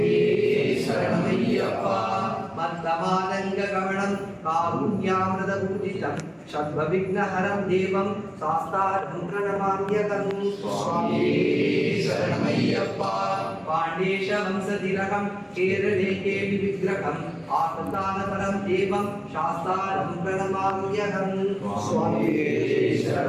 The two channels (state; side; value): identical; both; correlation 1.00